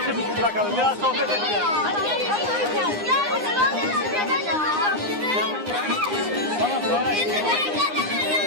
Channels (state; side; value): late; left; 9.7 ms